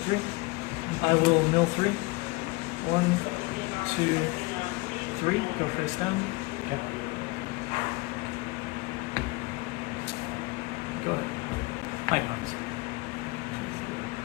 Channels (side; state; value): right; quieter; 24.6 dB